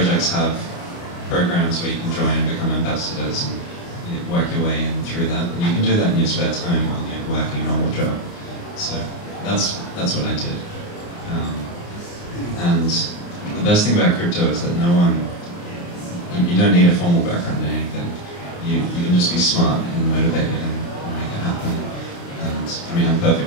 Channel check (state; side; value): late; right; 29 ms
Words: have programs where you can join and become ambassadors and work your way in through that. And you can do that in your spare time while you're working a normal job. So that's what I did. And the best thing about crypto is that you don't need a formal background in anything. You can just be smart and motivated and make it happen. And I mean, I'm a